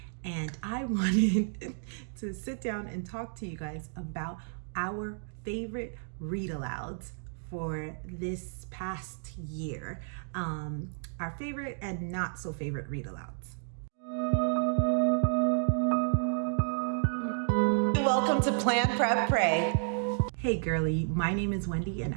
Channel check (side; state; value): left; silent; digital silence